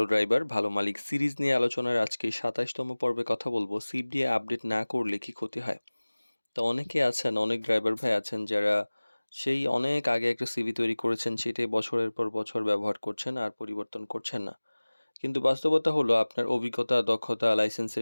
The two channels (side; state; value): both; inverted; correlation -1.00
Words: ড্রাইভার ভালো মালিক সিরিজ নিয়ে আলোচনার আজকে ২৭তম পর্বে কথা বলবো। সিপ দিয়ে আপডেট না করলে কি ক্ষতি হয়? তো অনেকে আছেন, অনেক ড্রাইভার ভাই আছেন যারা সেই অনেক আগে একটা সিভি তৈরি করেছেন, সেটাই বছরের পর বছর ব্যবহার করছেন আর পরিবর্তন করছেন না। কিন্তু বাস্তবতা হলো আপনার অভিজ্ঞতা, দক্ষতা,